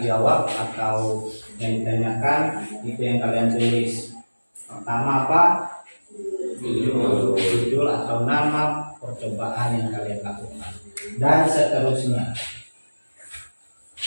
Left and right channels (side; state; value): both; inverted; correlation -1.00